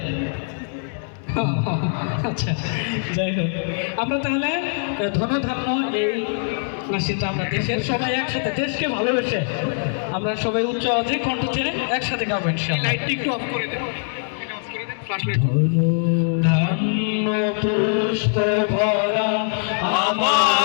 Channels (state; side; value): silent; right; digital silence